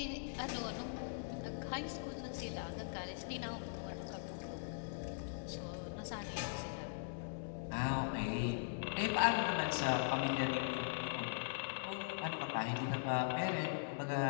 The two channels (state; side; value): silent; right; 50 dB below the other